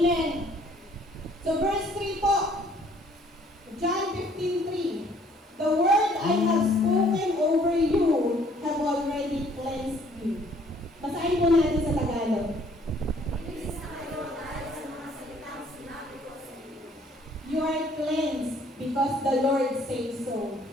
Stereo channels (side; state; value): both; normal; correlation 0.60